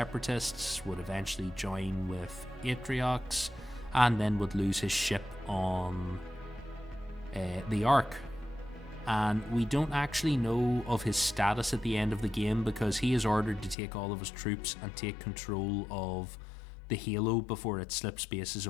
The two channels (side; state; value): right; drops out; at 13.8 s